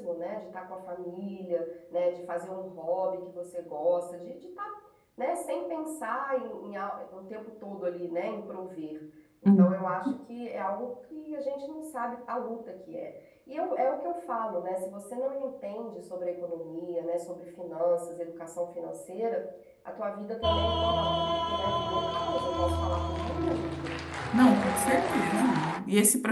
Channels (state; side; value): identical; both; correlation 1.00